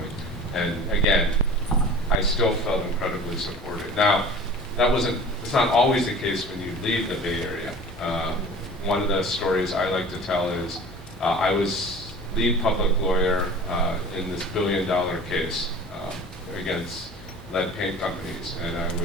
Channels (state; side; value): normal; both; correlation 0.41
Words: And again, I still felt incredibly supported. Now, it's not always the case when you leave the Bay Area. One of the stories I like to tell is I was lead public lawyer in this billion-dollar case against lead paint companies, and I